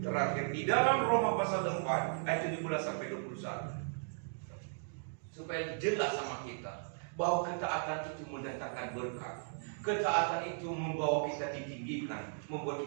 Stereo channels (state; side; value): silent; left; digital silence